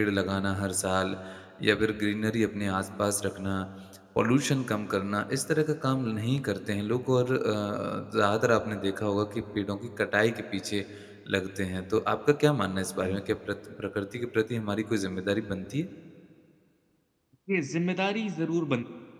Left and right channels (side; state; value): both; identical; correlation 1.00